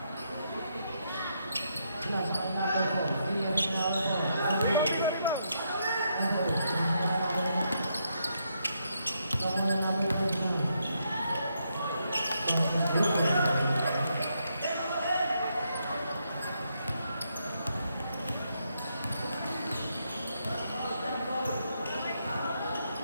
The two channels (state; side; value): inverted; both; correlation -0.78